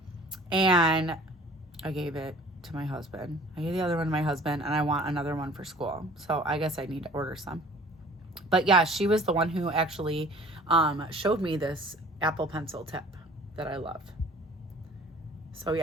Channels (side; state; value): both; normal; correlation 0.49